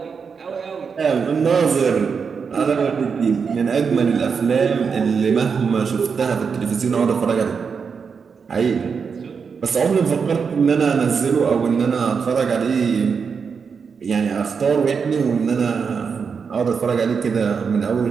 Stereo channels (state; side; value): quieter; left; 5.9 dB